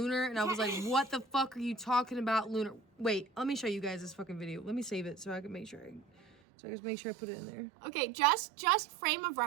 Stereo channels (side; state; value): left; drops out; at 6.4 s